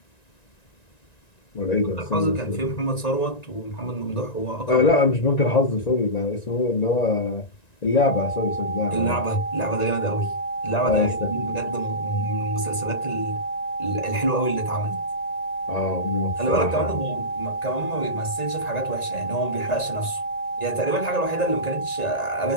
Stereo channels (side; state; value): right; late; 1.9 ms